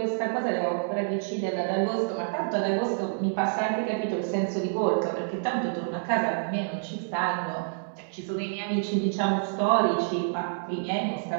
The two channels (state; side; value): silent; left; 59 dB below the other